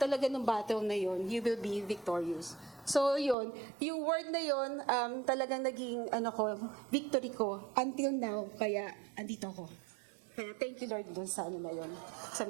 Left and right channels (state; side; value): drops out; left; at 3.4 s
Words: ng battle na yon, you will be victorious. So yun, yung word na yun, talagang naging victory ko until now. Kaya andito ako. Kaya thank you Lord dun sa na yun, sa